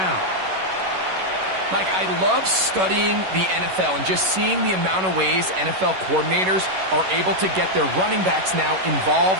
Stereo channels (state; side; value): late; left; 11 ms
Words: Mike, I love studying the NFL and just seeing the amount of ways NFL coordinators are able to get their running backs now